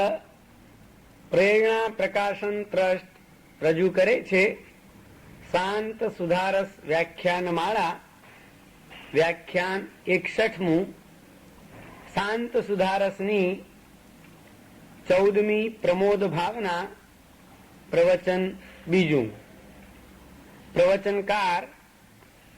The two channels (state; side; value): identical; both; correlation 1.00